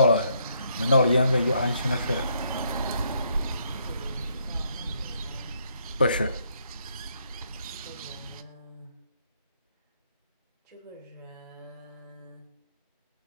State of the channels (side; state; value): both; inverted; correlation -0.72